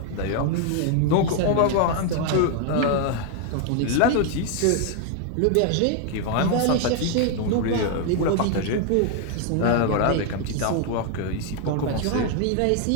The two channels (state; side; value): different; both; correlation 0.00